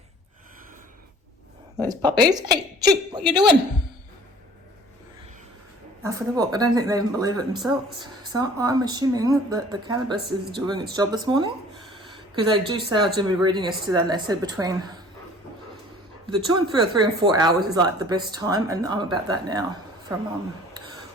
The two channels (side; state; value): both; normal; correlation 0.50